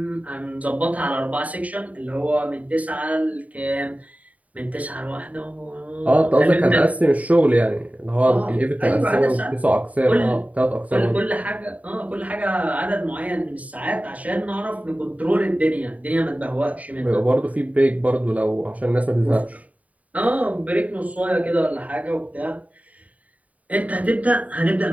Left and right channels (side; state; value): left; late; 0.070 ms